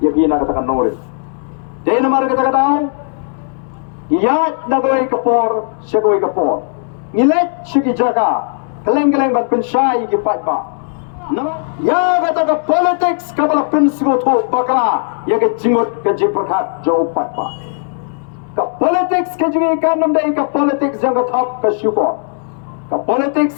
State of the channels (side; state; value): right; silent; 68 dB below the other